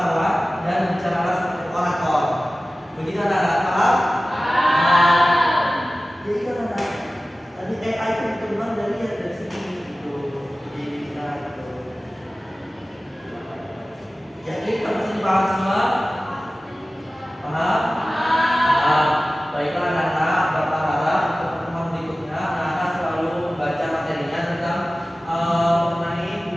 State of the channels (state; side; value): normal; both; correlation 0.96